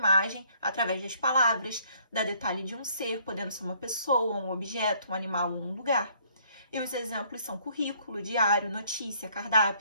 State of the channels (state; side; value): inverted; both; correlation -0.63